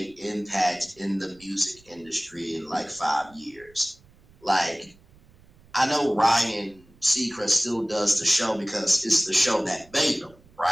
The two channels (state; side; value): noise; right; rumble, 28 dB below the sound